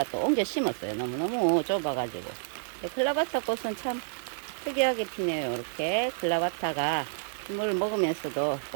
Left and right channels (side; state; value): left; silent; digital silence